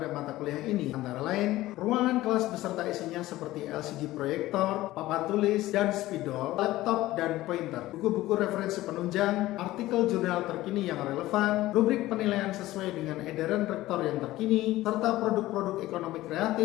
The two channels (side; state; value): right; quieter; 16.5 dB